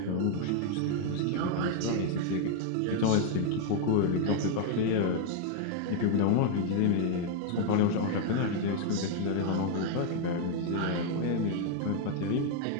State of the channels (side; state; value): both; different; correlation 0.00